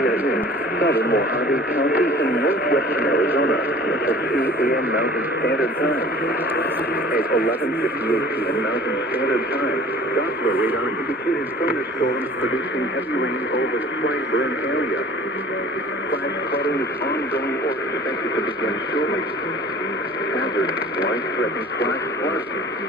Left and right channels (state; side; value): normal; both; correlation 0.46